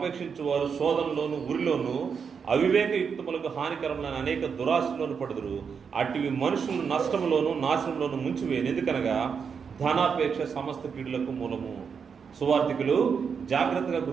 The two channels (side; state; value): left; quieter; 6.3 dB